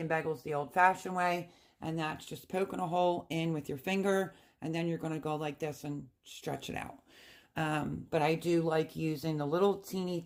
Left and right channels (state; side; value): identical; both; correlation 1.00